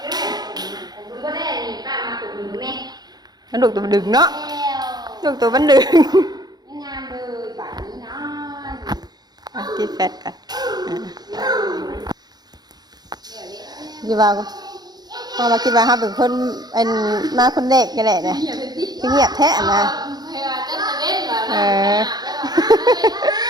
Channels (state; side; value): late; left; 0.19 ms